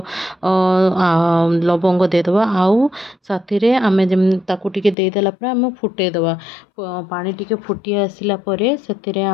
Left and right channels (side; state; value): right; drops out; at 5.0 s